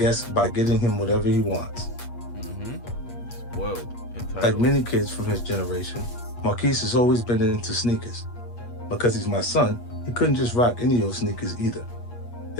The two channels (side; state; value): right; late; 8.4 ms